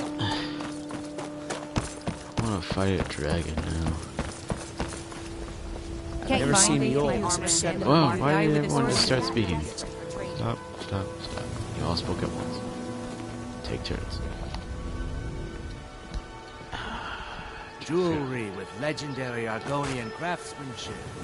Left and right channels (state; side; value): identical; both; correlation 1.00